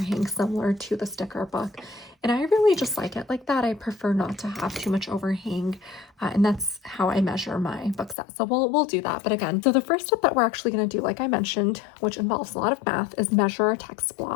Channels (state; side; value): drops out; right; at 8.2 s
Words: similar to the sticker book, and I really just like it like that. I prefer not to have too much overhang, and that's how I measure my book set. So we'll do that. But again, so the first step that we're actually going to do, like I mentioned, which involves a lot of math, is measure our text